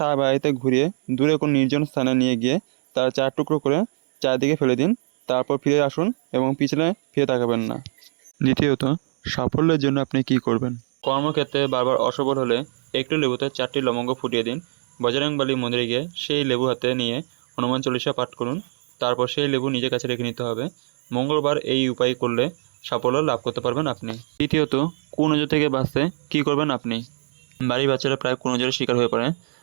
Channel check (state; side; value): silent; left; digital silence